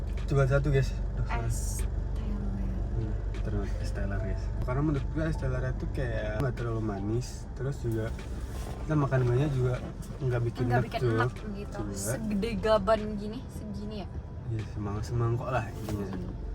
coba satu guys. Es Terus es teler guys. Karena menurut gua es teler itu kayak nggak terlalu manis. Terus juga kita makan banyak juga nggak bikin nggak enak bikin tuh. enak gitu. Juga. Segede gaban gini, segini ya. Ya semangkok lah intinya.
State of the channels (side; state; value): both; identical; correlation 1.00